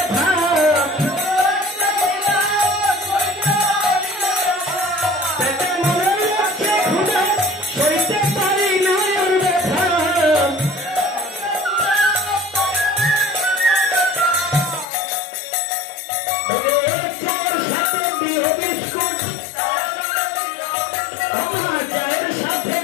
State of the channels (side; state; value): right; drops out; at 14.9 s